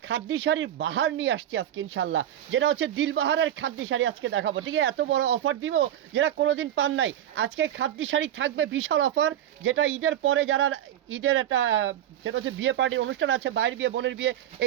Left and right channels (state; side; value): quieter; left; 11.4 dB